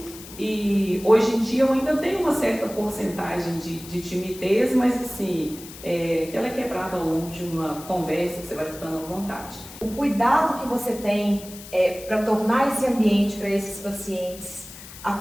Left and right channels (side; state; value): left; noise; hiss, 16 dB below the sound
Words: E hoje em dia eu ainda tenho uma certa porcentagem de timidez, mas assim, que ela é quebrada ao longo de uma conversa que você vai ficando à vontade. O cuidado que você tem para tornar esse ambiente para esses pacientes